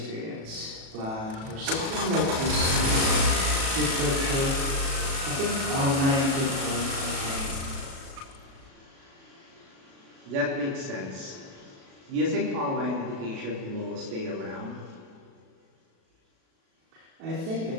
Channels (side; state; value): left; late; 37 ms